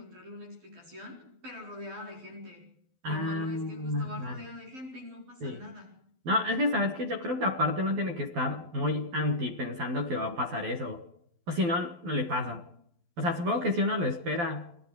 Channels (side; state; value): left; late; 12 ms